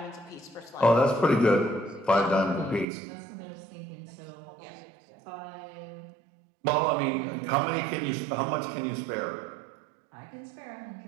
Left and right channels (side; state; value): left; drops out; at 2.9 s